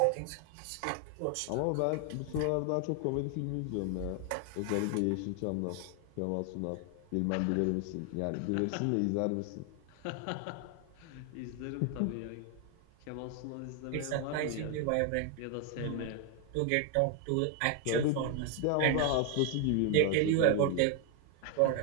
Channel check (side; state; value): both; different; correlation 0.01